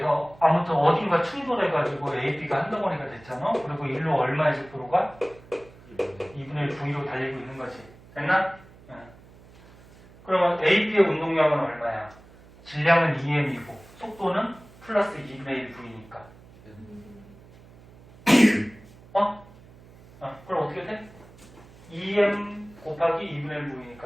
아무튼 어딘가 충돌해가지고 AB가 한 덩어리가 됐잖아. 그리고 일로 얼마의 속도로가? 2분의 1 V로 달리고 있는 거지. 됐나? 네. 그러면 AB의 운동량은 얼마야? 질량은 2m이고 속도는 플러스 2분의 1 V니까. 그럼 어떻게 돼? 2m 곱하기 2분의 1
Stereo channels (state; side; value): noise; right; hum, 23 dB below the sound